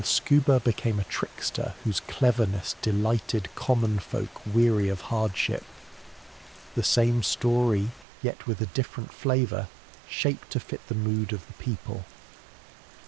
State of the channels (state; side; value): drops out; left; at 8.1 s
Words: Scuba became a trickster whose cleverness delighted common folk weary of hardship. The same story, yet with a different flavour, shaped to fit the mood of the people.